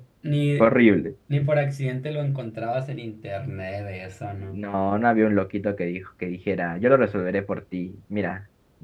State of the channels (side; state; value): both; identical; correlation 1.00